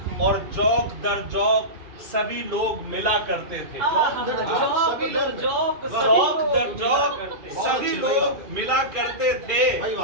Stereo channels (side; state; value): left; late; 2.4 ms